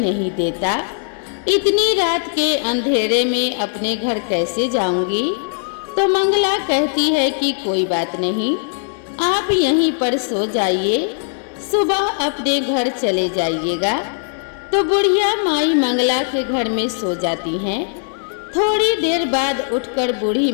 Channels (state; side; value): silent; right; digital silence